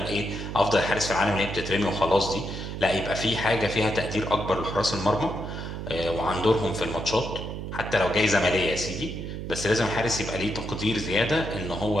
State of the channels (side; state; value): right; noise; hum, 6 dB below the sound